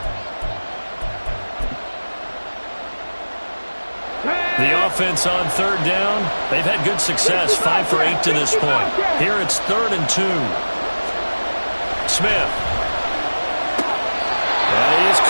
The offense on 3rd down, they've had good success, 5 for 8 to this point. Here it's 3rd and 2. Smith. And he is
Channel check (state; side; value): inverted; both; correlation -1.00